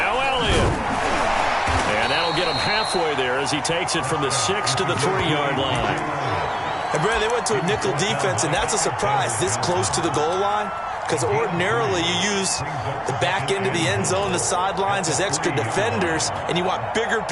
Elliott. And that'll get him halfway there as he takes it from the 6 to the 3-yard line. And, Brad, they went to a nickel defense, and that's a surprise this close to the goal line, because ordinarily you use the back end of the end zone, the sidelines as extra defenders, and you want bigger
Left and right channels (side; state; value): both; identical; correlation 1.00